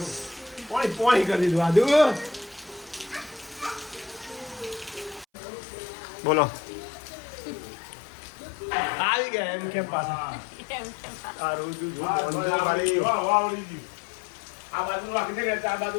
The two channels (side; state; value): right; drops out; at 5.2 s